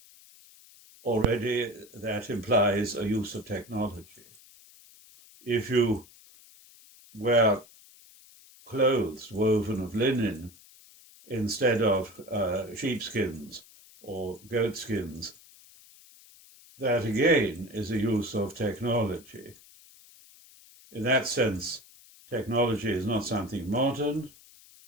already that implies a use of technology. If you wear clothes woven of linen instead of sheepskins or goatskins, that again is a use of technology. In that sense, technology is not something modern.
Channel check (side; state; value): left; noise; hiss, 24 dB below the sound